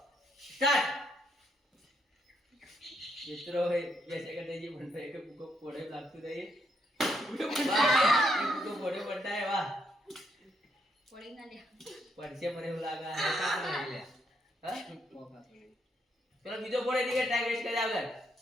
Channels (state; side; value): normal; both; correlation 0.75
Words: સ્ટાર્ટ. મિત્રો 2 સેકન્ડ થઈ ગઈ બનતા એક પૂકો ફોડે લાગતું રહી પૂકો ફોડે બનતા વાહ ફોડી ના લે પડશે મને એવું લાગે હા ચલો બીજો ફોડ એટલે ટાઈમ વેસ્ટ કરી આગળ